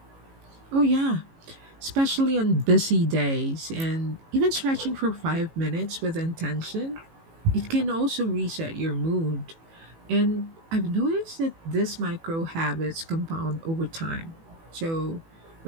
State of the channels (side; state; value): left; late; 18 ms